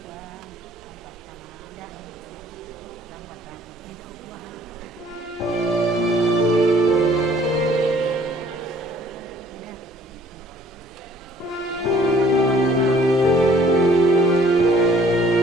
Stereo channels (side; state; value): both; normal; correlation 0.58